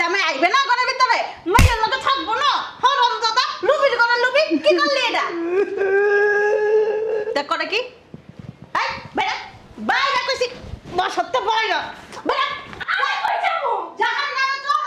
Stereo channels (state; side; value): identical; both; correlation 1.00